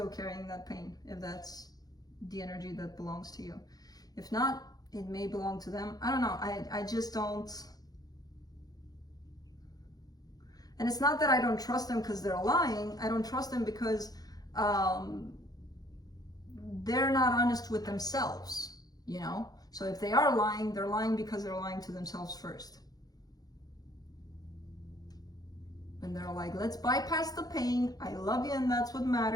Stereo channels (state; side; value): late; right; 0.19 ms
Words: carrying that pain, if that's the energy that belongs to you. If not, it may belong to them. I don't know. I just don't. And it's not that I don't trust them because they're lying. I don't trust them because they're not honest with themselves, you know? So if they are lying, they're lying because they're lying to themselves first. And they're like, let's bypass the pain. I love you and that's what